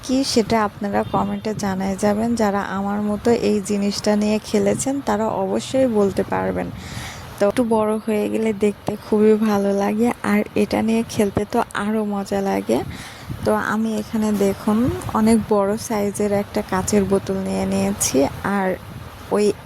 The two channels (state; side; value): identical; both; correlation 1.00